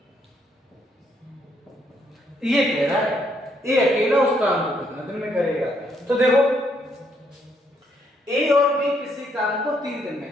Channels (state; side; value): normal; both; correlation 0.72